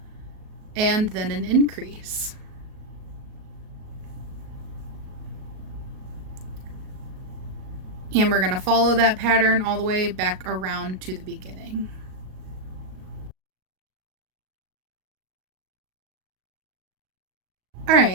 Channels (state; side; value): late; left; 38 ms